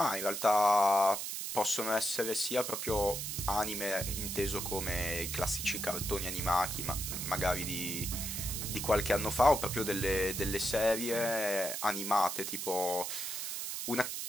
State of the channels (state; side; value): noise; right; hiss, 4 dB below the sound